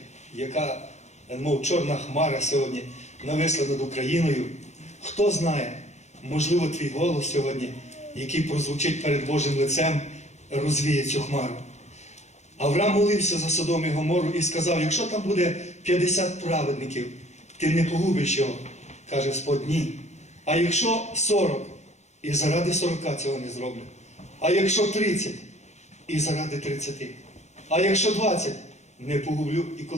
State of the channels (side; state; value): right; late; 0.33 ms